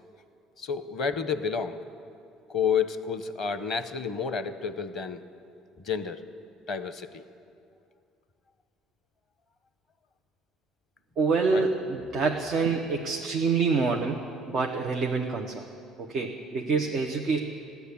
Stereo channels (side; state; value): both; normal; correlation 0.52